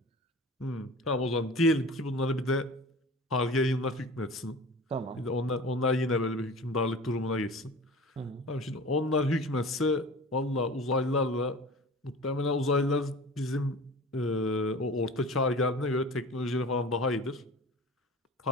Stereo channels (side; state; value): both; normal; correlation 0.38